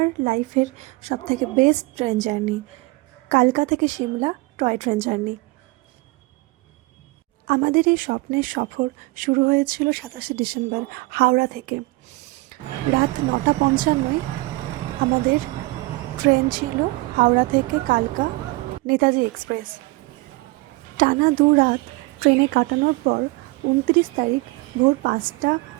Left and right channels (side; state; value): left; quieter; 23.2 dB